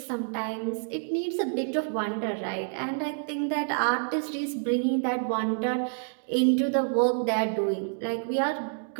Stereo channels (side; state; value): left; silent; digital silence